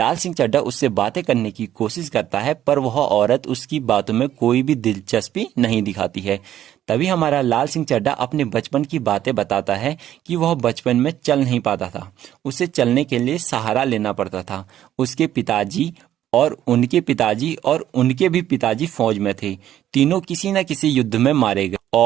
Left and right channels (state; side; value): quieter; left; 11.8 dB